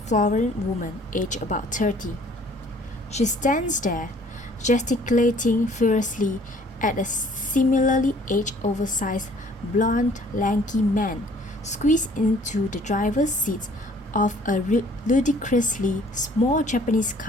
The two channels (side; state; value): both; normal; correlation 0.56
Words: woman aged about 30. She stands there, gesticulating furiously at a similarly aged oversized blonde lanky man squeezed into the driver's seat of a ludicrously small Japanese